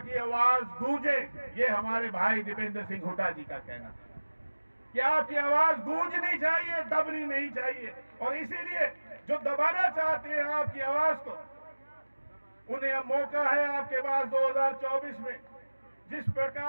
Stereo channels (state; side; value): inverted; both; correlation -1.00